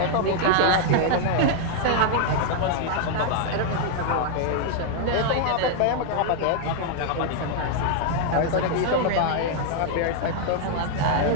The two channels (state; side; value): different; both; correlation 0.00